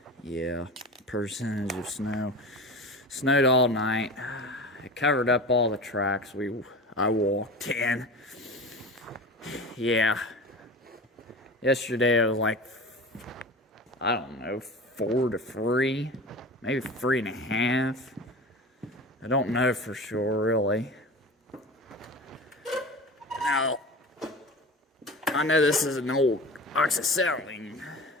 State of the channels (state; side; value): normal; both; correlation 0.33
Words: percentage of snow. Snowed all night. It covered up all the tracks I walked in. Yeah. Yesterday it was like, I don't know, 4 to 3, maybe 3.5. I don't know for sure, really. Now, I know this is an old oxyacetylene